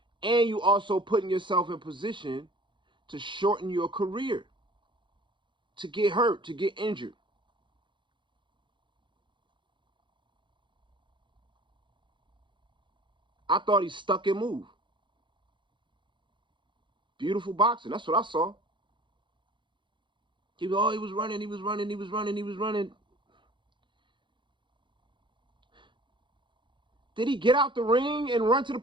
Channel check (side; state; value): left; late; 0.23 ms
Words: and you also putting yourself in position to shorten your career, to get hurt, to get injured. I thought he stuck and moved. Beautiful boxing. That's what I saw. He was running. Did he get out the ring and run to the